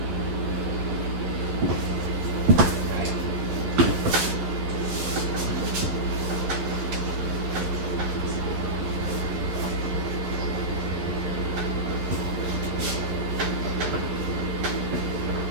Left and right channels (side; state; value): left; late; 12 ms